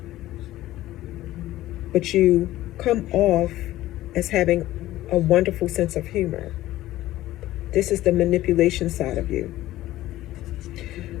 But you come off as having a wonderful sense of humor. This is the manipulation side of you.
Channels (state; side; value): quieter; right; 15.4 dB